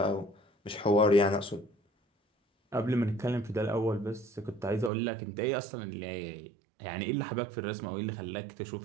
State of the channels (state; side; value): drops out; left; at 4.9 s